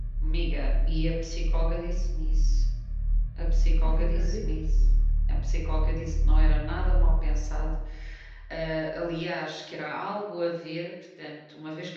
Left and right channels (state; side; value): identical; both; correlation 1.00